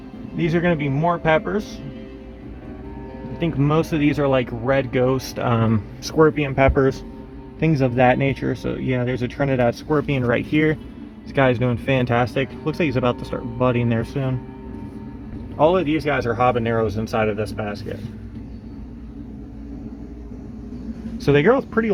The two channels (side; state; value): both; identical; correlation 1.00